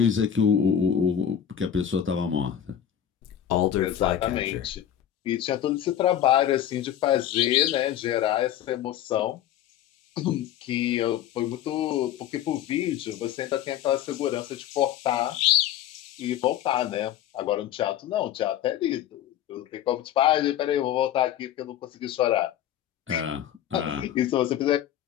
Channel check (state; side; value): quieter; right; 10.4 dB